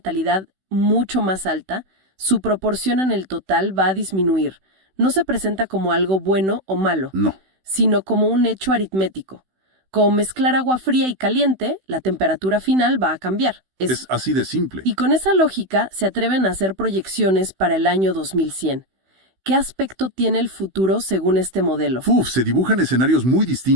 mucho más alta, su proporción en el total va a disminuir. No se presenta como algo bueno o malo, No. sino como un hecho aritmético. Como mezclar agua fría y caliente, la temperatura final va a cambiar. Es así de simple. Y con esa lógica se atreven a hacer proyecciones para el año 2100. ¿Qué aspecto tiene el futuro según este modelo? Se dibujan escenarios muy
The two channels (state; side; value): late; left; 16 ms